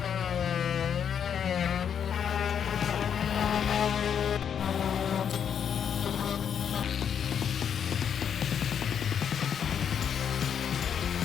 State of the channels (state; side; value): quieter; right; 8.1 dB